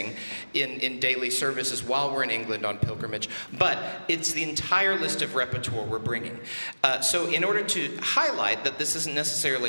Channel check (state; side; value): inverted; both; correlation -1.00